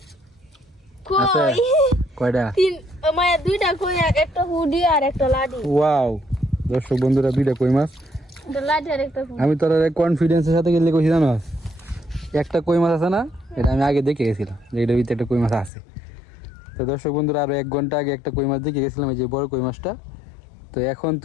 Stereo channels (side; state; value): right; drops out; at 15.7 s